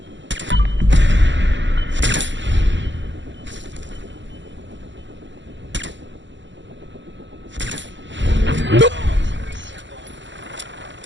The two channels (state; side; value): late; left; 0.54 ms